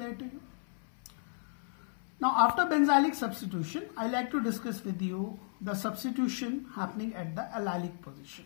to you. Now after benzylic substitution, I like to discuss with you the substitution happening at the allylic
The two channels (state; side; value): silent; right; 55 dB below the other